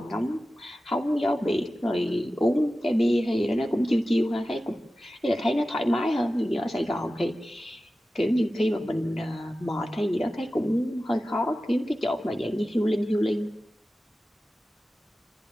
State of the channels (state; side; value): normal; both; correlation 0.95